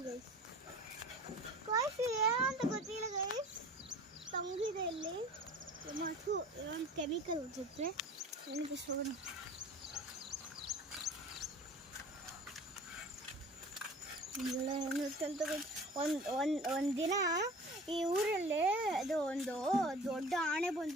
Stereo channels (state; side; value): normal; both; correlation 0.42